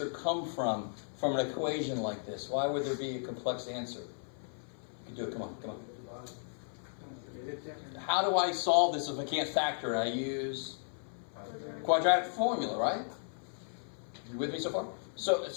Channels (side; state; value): right; silent; 54 dB below the other